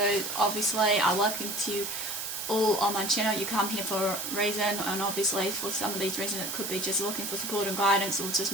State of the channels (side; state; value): right; noise; hiss, 5 dB below the sound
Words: obviously, I welcome to you all on my channel. You come here for a reason, and obviously for some of these reasons it could be just looking for support and guidance, or